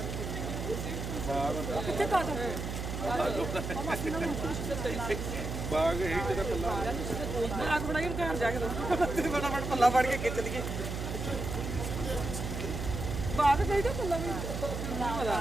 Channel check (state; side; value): noise; right; hum, 4 dB below the sound